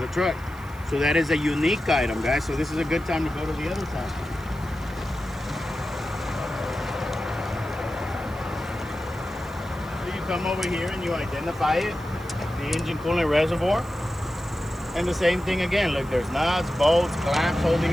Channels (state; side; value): noise; right; hiss, 24 dB below the sound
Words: the truck. So that is a unique item, guys. So this is a good time to go to the other side. So you come over here and you identify it, the engine coolant reservoir. And the same thing again. Look, there's nuts, bolts, clamps